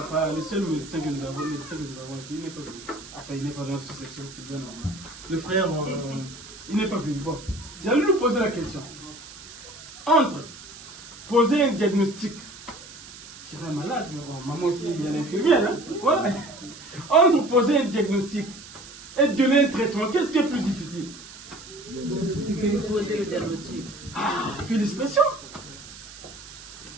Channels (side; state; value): right; noise; hiss, 16 dB below the sound